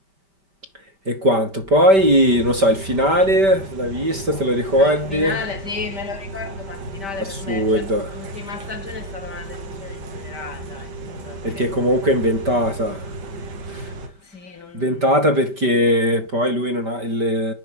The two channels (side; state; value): left; late; 5.1 ms